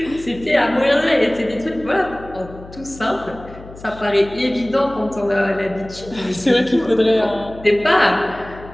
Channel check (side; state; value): left; noise; hum, 17 dB below the sound